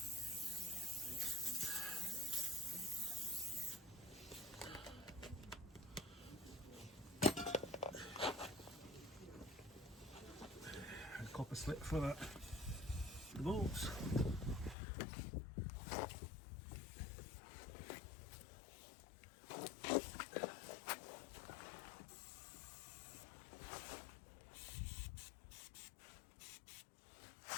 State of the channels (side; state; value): right; drops out; at 14.8 s